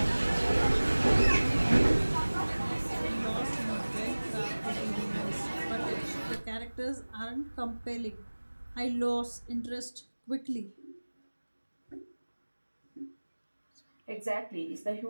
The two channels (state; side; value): inverted; both; correlation -1.00